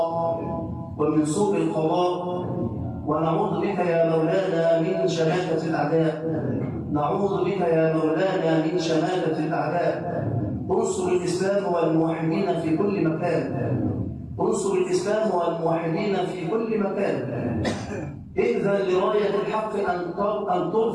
ومن سوء القضاء، ونعوذ بك يا مولانا من شماتة الأعداء. نعوذ بك يا مولانا من شماتة الأعداء. انصر الإسلام والموحدين في كل مكان، انصر الإسلام والموحدين في كل مكان. إذن لراية الحق أن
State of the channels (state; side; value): identical; both; correlation 1.00